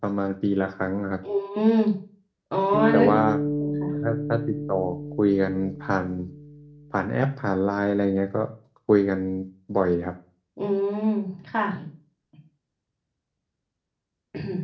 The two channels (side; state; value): both; identical; correlation 1.00